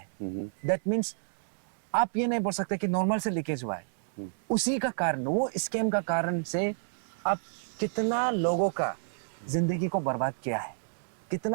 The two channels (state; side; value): silent; left; digital silence